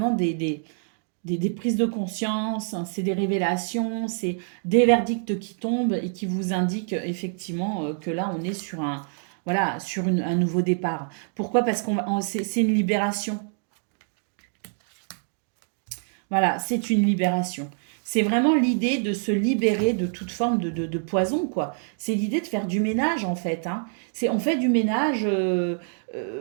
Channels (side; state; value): left; silent; 61 dB below the other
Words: des prises de conscience, hein, c'est des révélations, c'est des verdicts qui tombent et qui vous indiquent effectivement que là, on est sur voilà, sur un nouveau départ. Pourquoi? Parce que c'est une libération. Voilà, c'est une libération. C'est vraiment l'idée de se libérer de toute forme de poison, quoi. C'est l'idée de faire du ménage, en fait. Hein. On fait du ménage